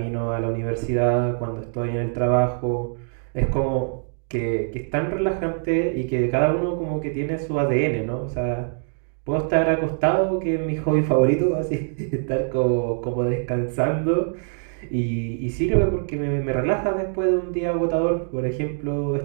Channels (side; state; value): left; silent; 62 dB below the other